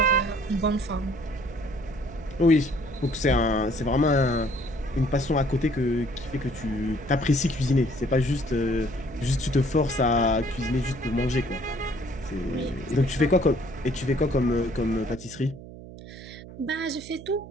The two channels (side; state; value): right; noise; hum, 15 dB below the sound